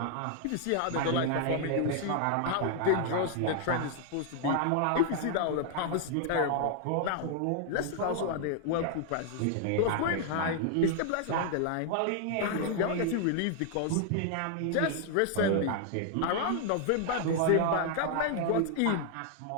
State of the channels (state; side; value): different; both; correlation 0.00